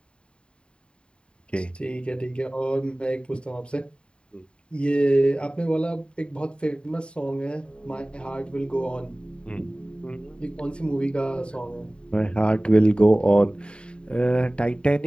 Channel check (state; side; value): late; right; 0.053 ms